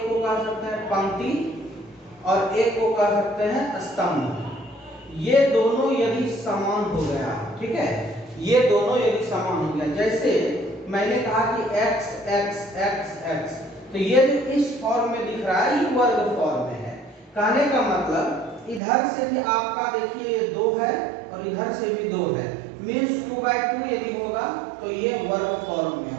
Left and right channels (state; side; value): drops out; left; at 18.8 s